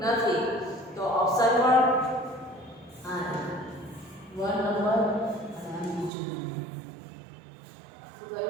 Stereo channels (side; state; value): left; drops out; at 6.1 s